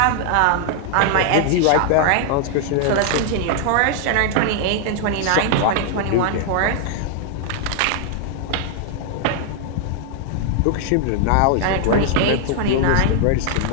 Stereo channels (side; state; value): both; different; correlation 0.00